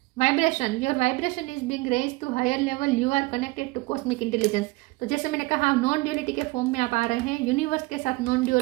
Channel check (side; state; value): left; quieter; 22.5 dB